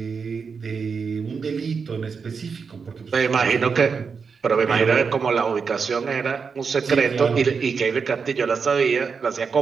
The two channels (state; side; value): quieter; left; 5.6 dB